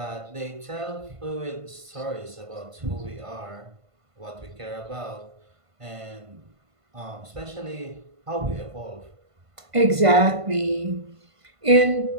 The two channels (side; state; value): left; late; 1.5 ms